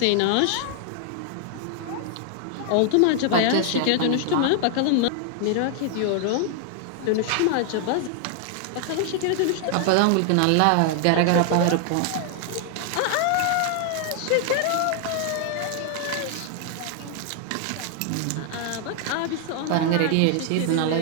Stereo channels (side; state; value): both; different; correlation 0.00